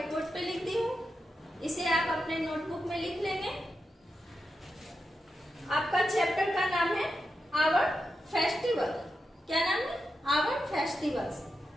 बोर्ड पे लिख दी हूँ। इसे आप अपने नोटबुक में लिख लेंगे। आपका चैप्टर का नाम है आवर फेस्टिवल। क्या नाम है? Our festivals.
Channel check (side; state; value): both; normal; correlation 0.88